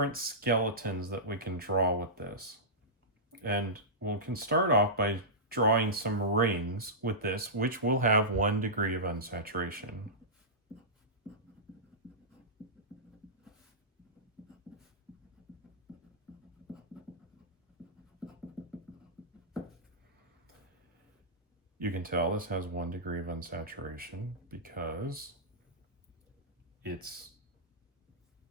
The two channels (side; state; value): both; normal; correlation -0.16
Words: skeletons that we can draw with this. And we can start off by drawing some rings with this, which will have 1 degree of unsaturation. You can tell this has 1 degree of unsaturation because it's